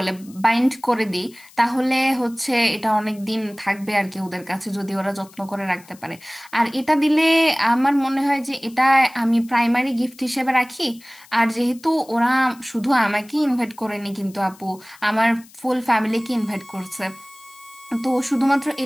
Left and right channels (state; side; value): noise; left; hiss, 24 dB below the sound